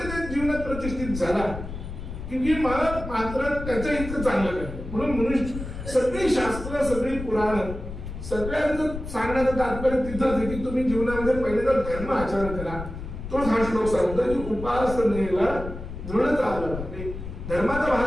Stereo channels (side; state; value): left; noise; rumble, 9 dB below the sound